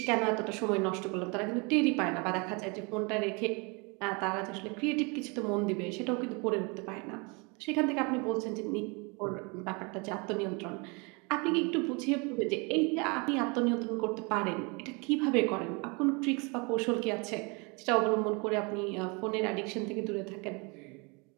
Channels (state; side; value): quieter; left; 30.3 dB